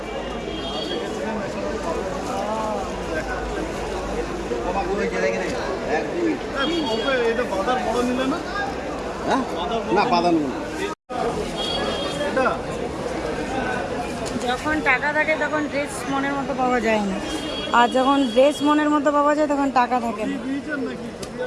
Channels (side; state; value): both; identical; correlation 1.00